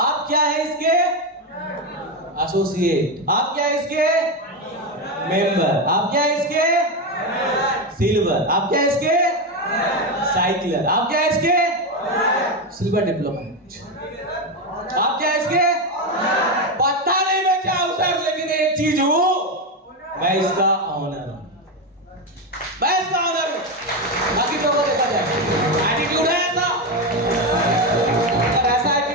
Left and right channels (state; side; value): normal; both; correlation 0.11